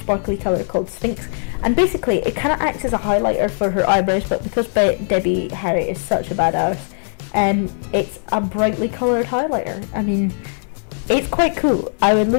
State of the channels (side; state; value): right; silent; 65 dB below the other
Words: colour called Sphinx, and basically it kind of acts as a highlighter for her eyebrows, but because Debbie Harry is such a badass, it's a brightly coloured highlighter. I mean, it's quite cool. I would